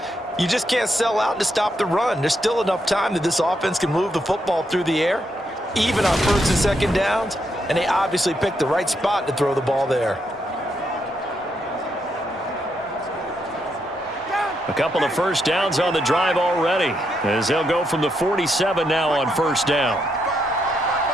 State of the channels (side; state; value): both; normal; correlation 0.79